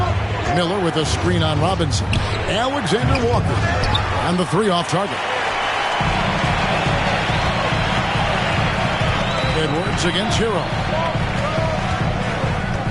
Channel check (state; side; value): identical; both; correlation 1.00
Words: Miller with a screen on Robinson. Alexander Walker. And the three off target. Edwards against Hero.